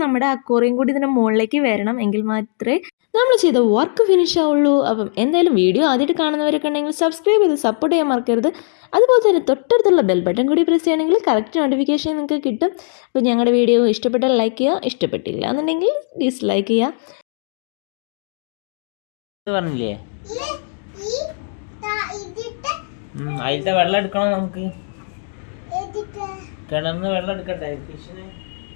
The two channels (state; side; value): silent; right; digital silence